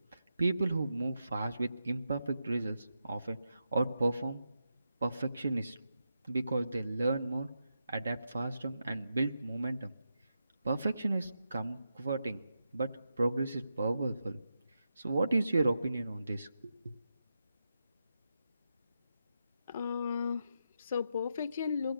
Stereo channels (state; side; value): inverted; both; correlation -0.87